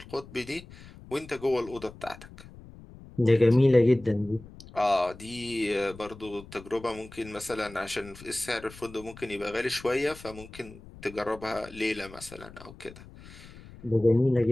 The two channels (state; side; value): noise; left; rumble, 18 dB below the sound